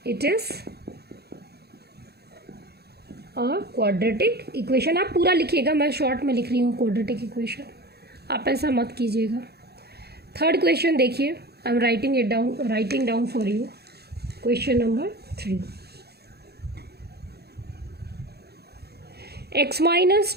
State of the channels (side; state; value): left; late; 0.47 ms